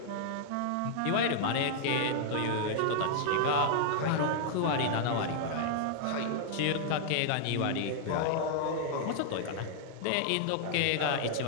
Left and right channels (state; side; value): different; both; correlation -0.01